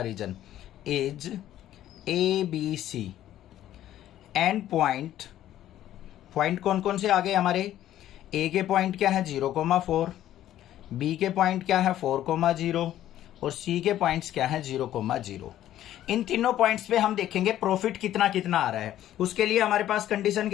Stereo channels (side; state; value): right; quieter; 12.5 dB